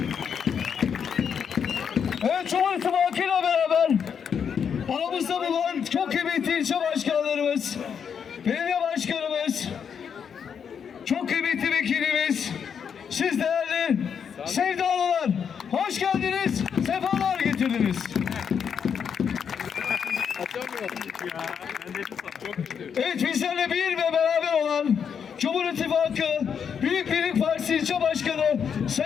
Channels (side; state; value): right; quieter; 7.3 dB